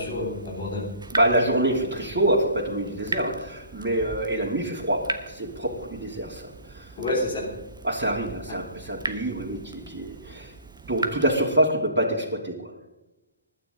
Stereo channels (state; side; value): inverted; both; correlation -0.48